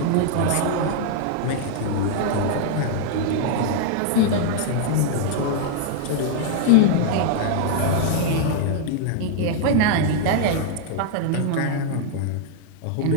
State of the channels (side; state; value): both; different; correlation 0.00